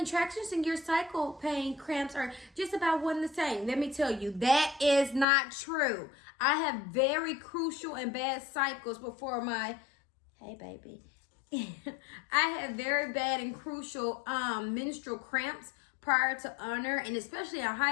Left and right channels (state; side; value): drops out; right; at 5.2 s